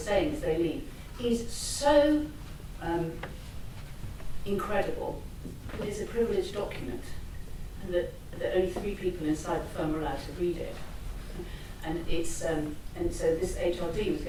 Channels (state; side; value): identical; both; correlation 1.00